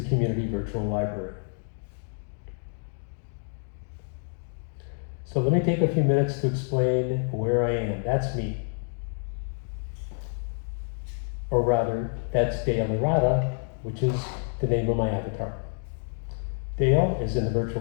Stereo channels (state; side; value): silent; right; 59 dB below the other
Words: Community Virtual Library. So let me take a few minutes to explain where I am. That's me. Or rather, that's Dale Irada, which is the name of my avatar. Dale is in the